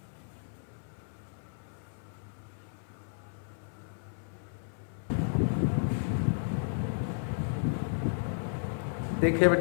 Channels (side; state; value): right; silent; 56 dB below the other